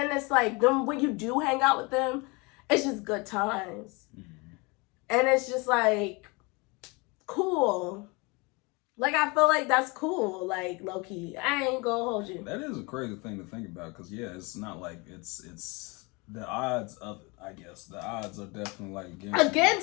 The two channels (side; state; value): right; quieter; 27.7 dB